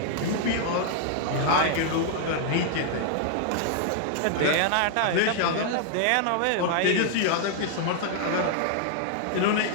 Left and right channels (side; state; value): both; different; correlation 0.00